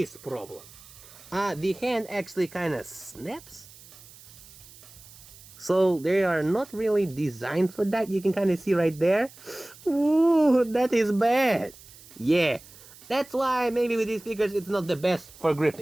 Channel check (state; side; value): noise; right; hiss, 21 dB below the sound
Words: problem. The hand actually kind of snaps. So they are not really designed for that. You can kind of see right there. Ooh, that is bad. Yeah, that's why maybe with these figures it's not the best for